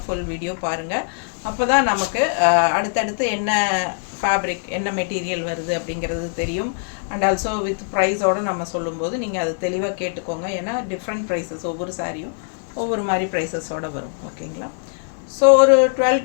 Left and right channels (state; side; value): silent; right; 64 dB below the other